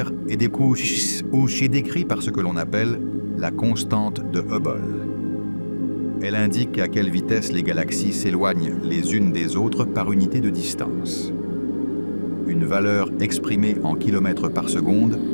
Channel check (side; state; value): both; inverted; correlation -1.00